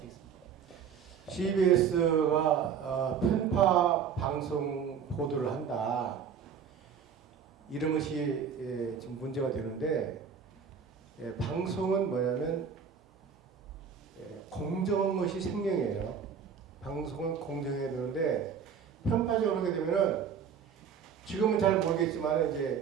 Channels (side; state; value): left; quieter; 7.1 dB